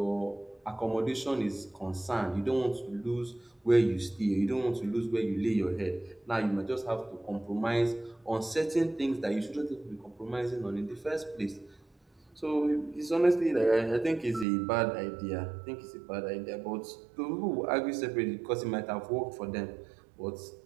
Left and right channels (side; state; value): left; drops out; at 14.5 s